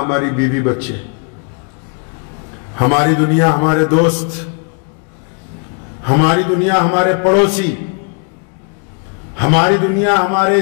بیوی بچے، ہماری دنیا ہمارے دوست، ہماری دنیا ہمارے پڑوسی، ہماری دنیا ہمارے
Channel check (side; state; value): right; quieter; 39.5 dB